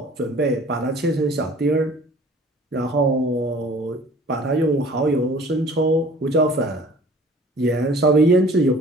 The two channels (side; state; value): both; normal; correlation 0.49